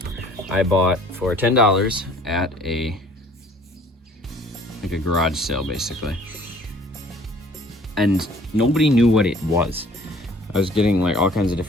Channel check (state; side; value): normal; both; correlation 0.53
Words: I bought for $10 at a garage sale basically, and nobody knew what it was. I was getting like all kinds of